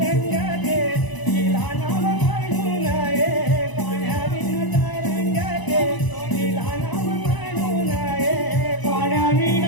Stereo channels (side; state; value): right; late; 1.0 ms